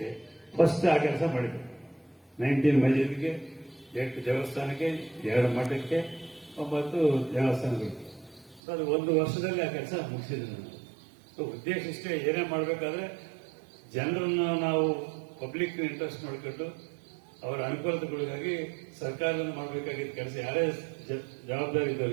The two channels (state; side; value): drops out; left; at 8.6 s